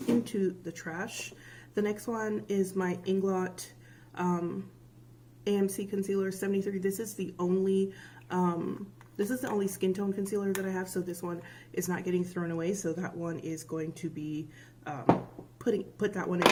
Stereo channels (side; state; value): both; identical; correlation 1.00